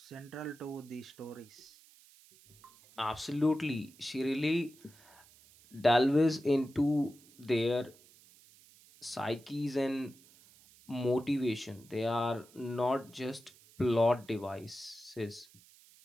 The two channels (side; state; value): right; noise; hiss, 25 dB below the sound